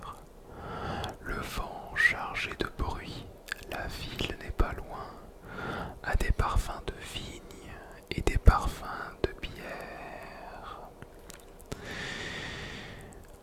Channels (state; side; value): identical; both; correlation 1.00